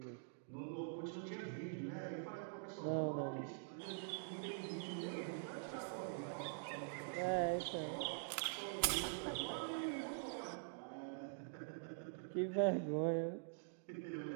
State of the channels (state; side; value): silent; left; digital silence